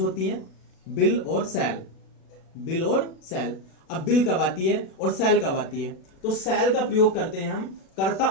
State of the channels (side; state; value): right; late; 37 ms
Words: हैं, बिल और सेल। बिल और सेल। अब बिल कब आती है और सेल कब आती है? तो सेल का प्रयोग करते हैं हम कर्ता